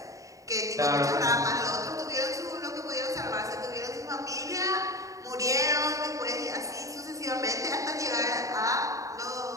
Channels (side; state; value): left; late; 0.16 ms